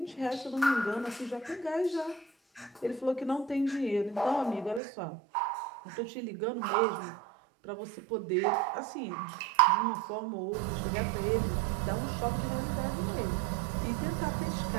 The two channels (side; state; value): left; drops out; at 4.8 s